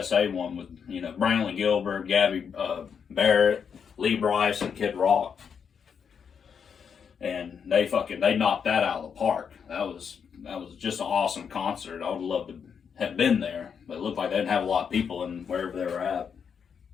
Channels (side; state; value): right; quieter; 6.9 dB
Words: one with, Brantley Gilbert, Gabby Barrett, Lee Brice, and Kid Rock. And they knocked that out of the park. That was just an awesome concert. I would love to have been there, but it looked like they didn't have a lot of people in wherever they were at.